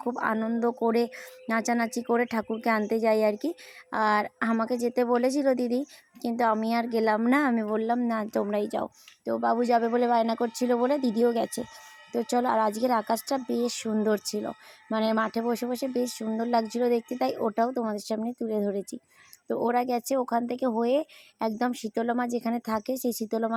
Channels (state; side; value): identical; both; correlation 1.00